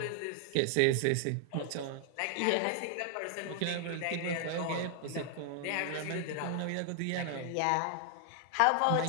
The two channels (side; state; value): both; different; correlation 0.00